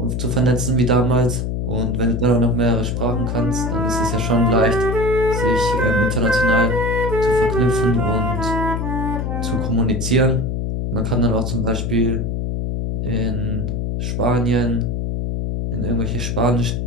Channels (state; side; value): noise; left; hum, 1 dB below the sound